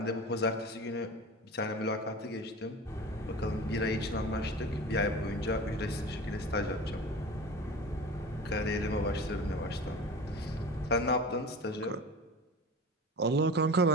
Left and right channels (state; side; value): normal; both; correlation 0.34